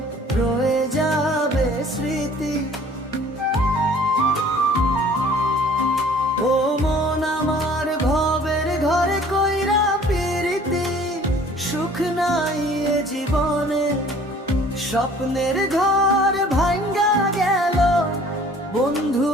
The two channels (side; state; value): both; normal; correlation 0.52